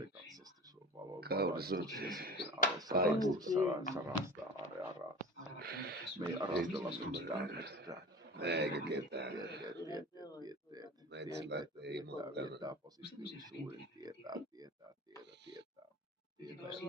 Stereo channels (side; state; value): both; normal; correlation 0.36